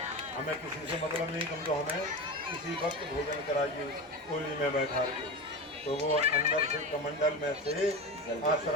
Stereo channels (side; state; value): both; normal; correlation 0.24